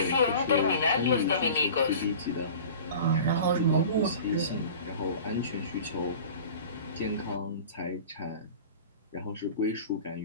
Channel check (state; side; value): inverted; both; correlation -0.39